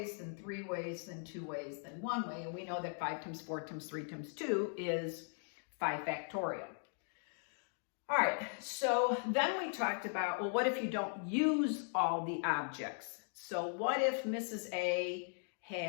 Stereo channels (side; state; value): right; silent; 52 dB below the other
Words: then 3 ways, then 2 ways, then 1 way, and we know that 5 times 4 times 3 times 2 is 5 factorial. All right, so then we talked about, well, what if you don't use all the objects? So what if Mrs. A